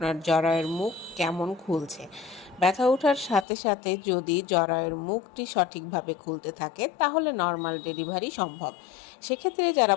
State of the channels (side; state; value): right; drops out; at 3.5 s